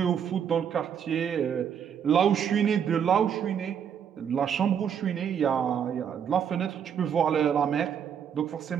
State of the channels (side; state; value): left; quieter; 8.1 dB